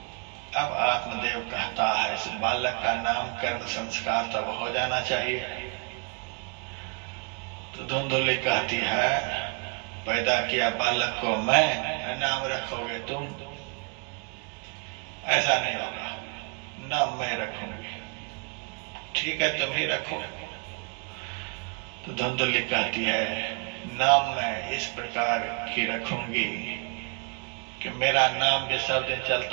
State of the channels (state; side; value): quieter; left; 36.2 dB